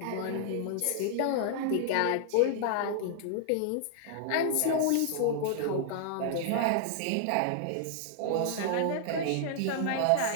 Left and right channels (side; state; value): both; different; correlation -0.01